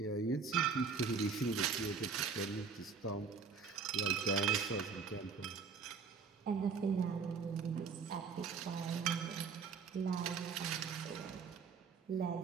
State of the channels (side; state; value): left; quieter; 5.4 dB